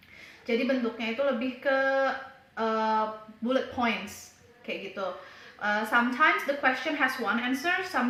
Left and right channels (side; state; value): both; identical; correlation 1.00